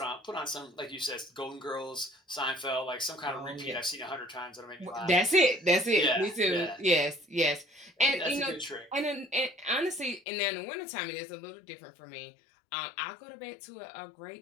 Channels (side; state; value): right; drops out; at 10.2 s